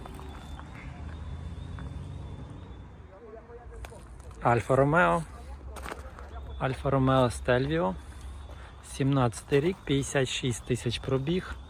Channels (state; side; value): identical; both; correlation 1.00